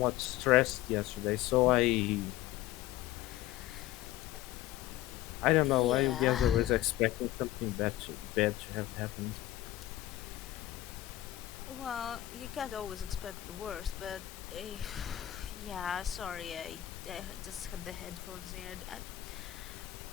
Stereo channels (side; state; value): right; quieter; 15.0 dB